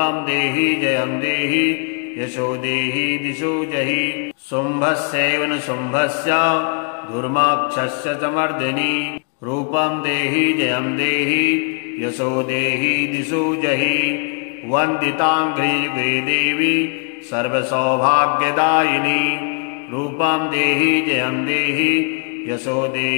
देहि जयं देहि यशो देहि दिशो जहि शुम्भस्यैव न शुम्भस्य धूर्माक्षस्य च मर्दिनी। रूपं देहि जयं देहि यशो देहि दिशो जहि वन्दिताङ्घ्रियुगे देवी सर्वसौभाग्यदायिनी। रूपं देहि जयं देहि यशो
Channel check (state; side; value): quieter; right; 39.6 dB